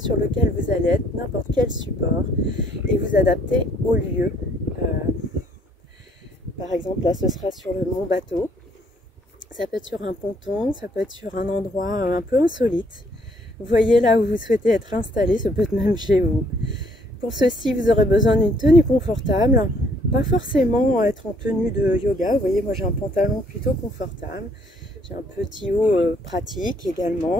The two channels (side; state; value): both; normal; correlation 0.65